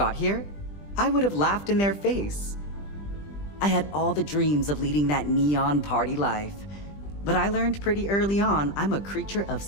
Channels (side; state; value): right; late; 20 ms